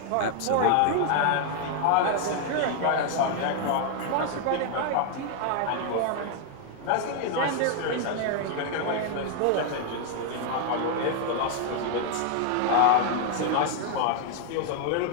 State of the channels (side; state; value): both; different; correlation 0.00